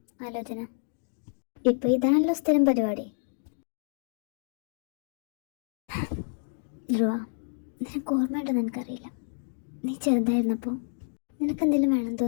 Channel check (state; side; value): silent; right; digital silence